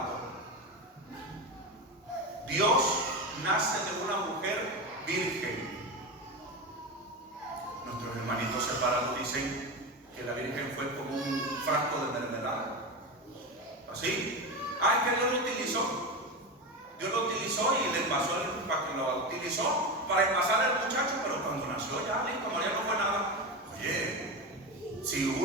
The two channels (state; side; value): normal; both; correlation 0.19